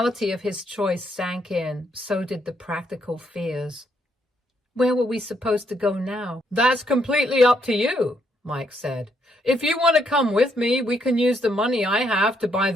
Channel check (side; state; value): both; normal; correlation 0.74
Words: of his choice sank in, so did the practical fears. Where were we supposed to go now? "That's completely up to you," Mike said. "If you want to come with me, we can use the money I have to buy